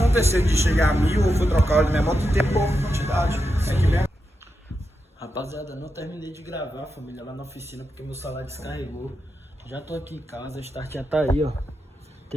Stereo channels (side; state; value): both; normal; correlation 0.87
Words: de chegar a 1000 ou for trocar o óleo da minha moto e ter pouca quantidade. É que bem. Rapaziada, não terminei de gravar, família, lá na oficina, porque meu celular descarregou. Já tô aqui em casa, a start já tá aí, ó.